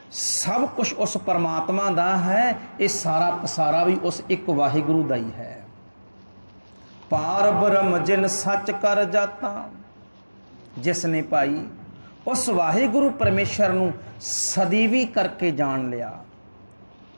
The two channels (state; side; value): inverted; both; correlation -1.00